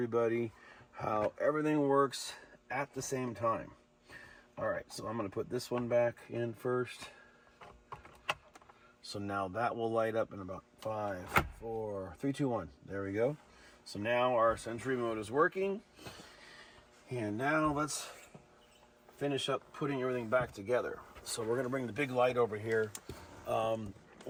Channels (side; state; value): both; identical; correlation 1.00